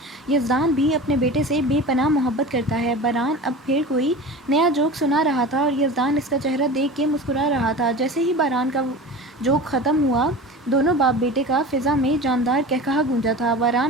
یزدان بھی اپنے بیٹے سے بے پناہ محبت کرتا ہے۔ باران اب پھر کوئی نیا جوک سنا رہا تھا اور یزدان اس کا چہرہ دیکھ کے مسکرا رہا تھا۔ جیسے ہی باران کا جوک ختم ہوا، دونوں باپ بیٹے کا فضا میں جاندار قہقہا گونجا تھا۔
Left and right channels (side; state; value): both; normal; correlation 0.34